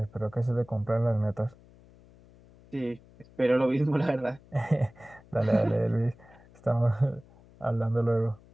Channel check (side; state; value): left; noise; hum, 25 dB below the sound